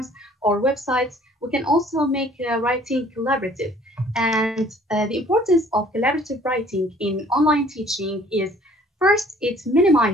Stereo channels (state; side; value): normal; both; correlation 0.55